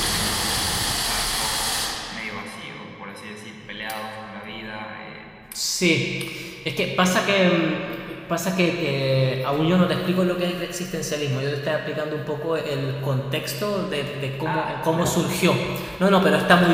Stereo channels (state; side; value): identical; both; correlation 1.00